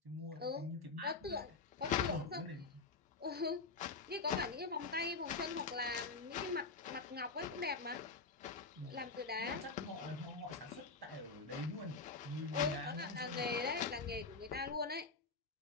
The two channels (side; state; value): right; quieter; 4.2 dB